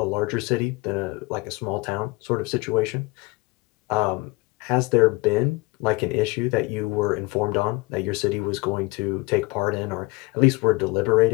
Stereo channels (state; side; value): quieter; right; 24.2 dB